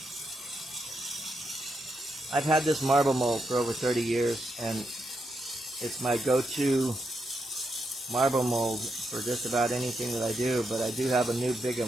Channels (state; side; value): normal; both; correlation 0.83